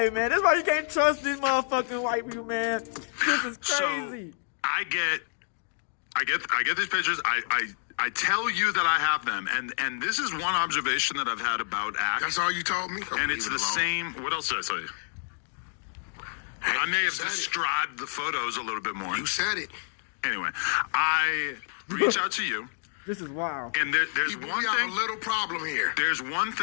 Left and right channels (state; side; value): silent; right; digital silence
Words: man. That's why you can't trust these motherfucking white people, man. This is crazy. So I get these pictures. I tell you that I have them, and this is one observation that I've had about ACT. That's all you told me? And it's the same. What else did I tell you? I may have said it. described the photos a little bit more. You said it. Anyway, I reach out to you, This is wild. and there's We one have thing. a little problem here. There's one